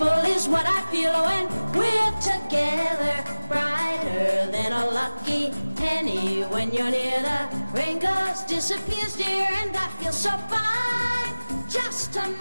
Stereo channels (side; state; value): both; inverted; correlation -1.00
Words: is what I feel when we're together. Brighter than a lucky penny when you're near. The rain goes, disappears, dear, and I feel so fine just to